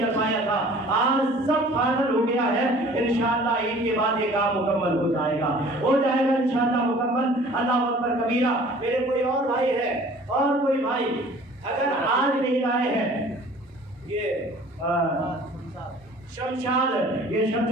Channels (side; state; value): both; normal; correlation 0.49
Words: پایا تھا. آج سب فائنل ہو گیا ہے. انشاءاللہ عید کے بعد یہ کام مکمل ہو جائے گا انشاءاللہ مکمل. اللہ اکبر کبیرہ. میرے کوئی اور بھائی ہے اور کوئی بھائی اگر آج نہیں لائے ہیں یہ شمشاد یہ